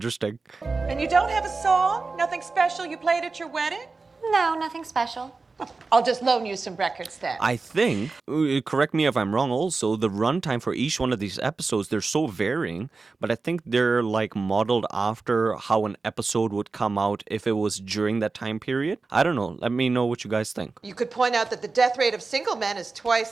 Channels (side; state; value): left; quieter; 4.0 dB